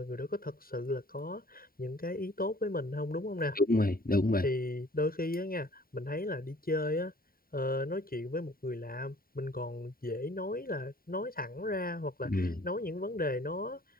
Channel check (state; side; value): late; right; 0.43 ms